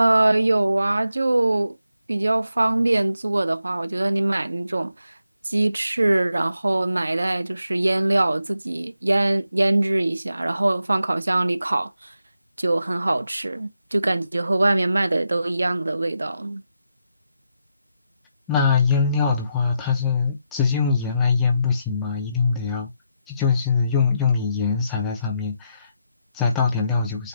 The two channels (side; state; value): both; inverted; correlation -0.83